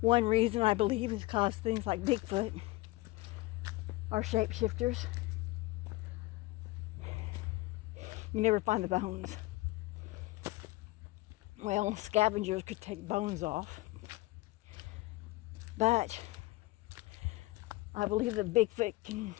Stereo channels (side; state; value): right; quieter; 20.3 dB